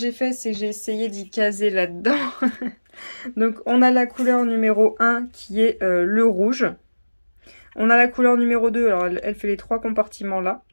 fait, c'est que j'ai essayé d'y caser là-dedans. Donc, on a la couleur numéro 1 qui est le rouge. On a la couleur numéro 2, alors elle fait les 3 compartiments là,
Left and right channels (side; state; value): both; inverted; correlation -1.00